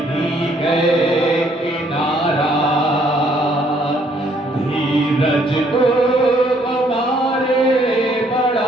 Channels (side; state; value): both; normal; correlation 0.66